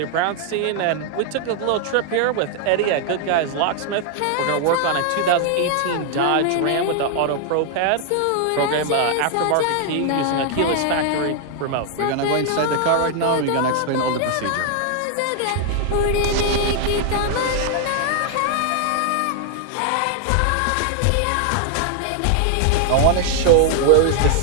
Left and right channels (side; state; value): both; different; correlation 0.00